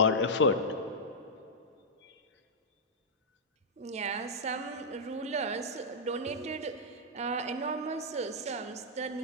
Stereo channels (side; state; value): both; normal; correlation -0.09